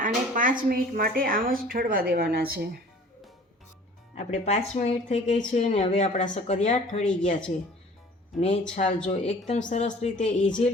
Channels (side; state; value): both; normal; correlation 0.48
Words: આને 5 મિનિટ માટે આમ જ ઠરવા દેવાના છે. આપણે 5 મિનિટ થઈ ગઈ છે અને હવે આપણા શક્કરિયા ઠરી ગયા છે. ને છાલ જો એકદમ સરસ રીતે